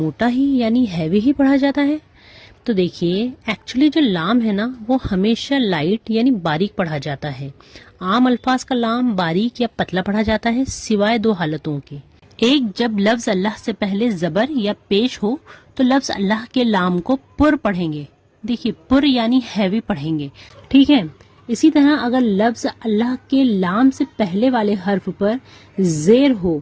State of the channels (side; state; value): both; identical; correlation 1.00